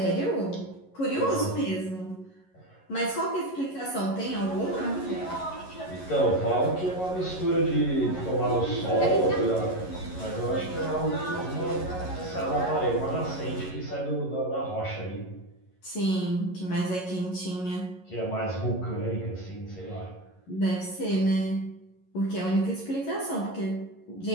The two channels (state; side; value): late; right; 11 ms